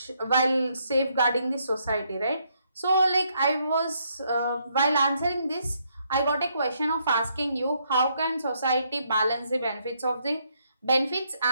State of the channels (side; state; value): both; inverted; correlation -0.74